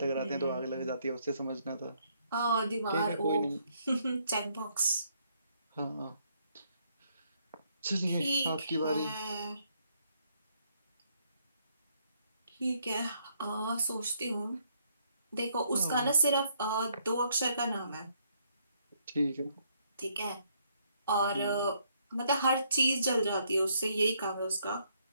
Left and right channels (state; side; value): inverted; both; correlation -0.71